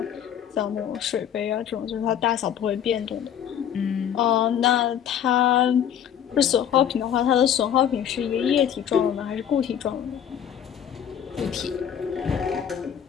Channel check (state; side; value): quieter; right; 9.3 dB